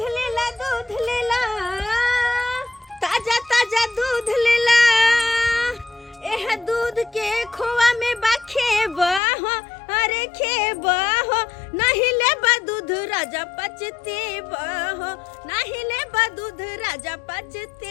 लेला ताजा ताजा दूध लेला एह दूध के खोआ में बा खेबा हो अरे खेबा हो नहीं लेबा दूध राजा पचतेबा हो नहीं लेबा दूध राजा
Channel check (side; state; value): right; drops out; at 9.2 s